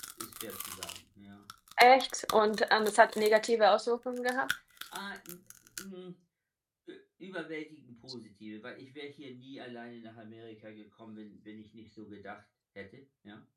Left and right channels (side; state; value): both; identical; correlation 1.00